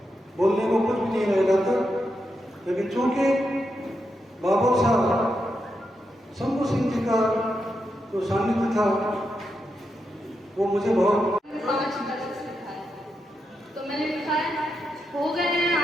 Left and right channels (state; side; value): normal; both; correlation 0.85